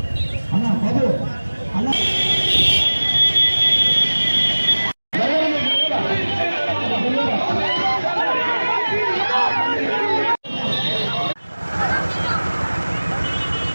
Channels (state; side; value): inverted; both; correlation -1.00